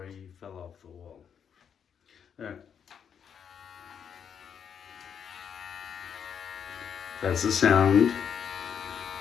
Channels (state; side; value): quieter; right; 7.7 dB